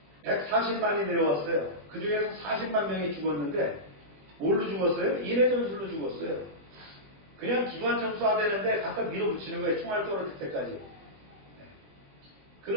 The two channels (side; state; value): left; late; 20 ms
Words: 140만이 내려왔어요. 그 중에서 40만 명이 죽었는데 뭘로 죽었어요? 인해 전술로 죽었어요. 그냥 기관총 쏴대는데 갖다 밀어붙이는 거예요. 총알 떨어질 때까지.